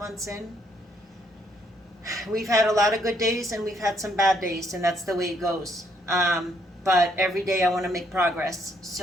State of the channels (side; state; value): both; normal; correlation 0.70